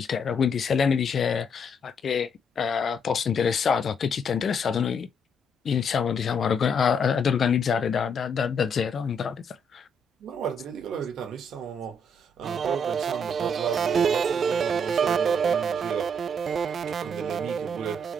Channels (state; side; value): normal; both; correlation 0.72